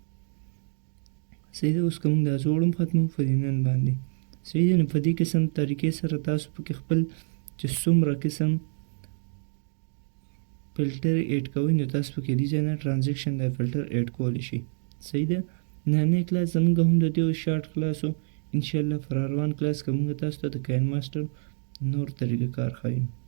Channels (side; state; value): left; silent; 60 dB below the other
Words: صحیح ده. اوس که موږ دا زوړ هم ختموو پر دې نن باندې. صحیح ده. نو په دې قسم طریقې سره تاسو پکې خپل چې څومره قسم فلټر ایډ کوئ نو تاسو پکې دې ځای نه ټرانزیکشن دا فلټر ایډ کولی شئ. صحیح ده. نننی کلاس زموږ هم د دې شارټ کلاس و. انشاءالله پر روان کلاس که موږ تاسو ته د کاینماستر نور طریقه کار ښیو.